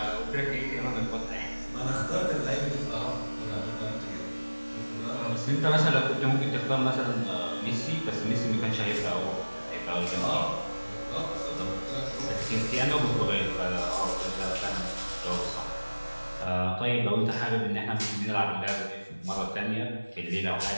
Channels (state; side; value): inverted; both; correlation -1.00